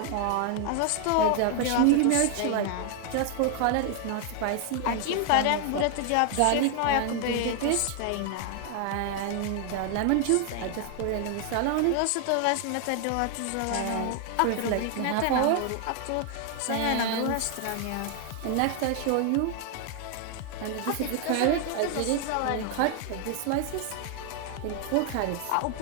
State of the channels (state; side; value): different; both; correlation 0.00